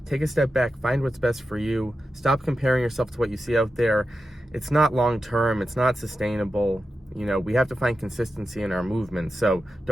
take a step back, find what's best for you. Stop comparing yourself to what you see out there. It's not long term, it's not sustainable. You know, we have to find consistency in our movements, so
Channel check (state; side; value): normal; both; correlation 0.91